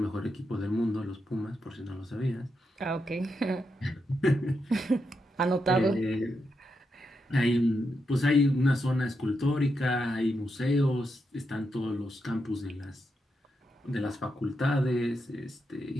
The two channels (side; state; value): both; normal; correlation 0.84